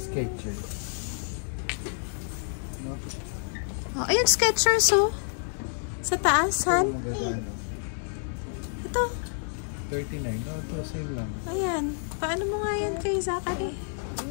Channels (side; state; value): right; silent; digital silence